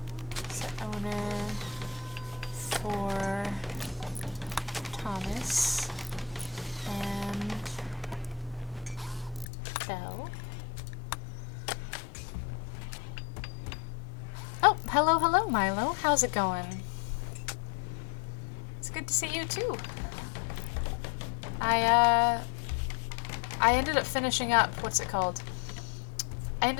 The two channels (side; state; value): right; drops out; at 9.5 s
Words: Set owner for Thomas and Belle. Oh, hello, Milo. How's it going? It's good to see you too. I ended up finishing up, what's it called? I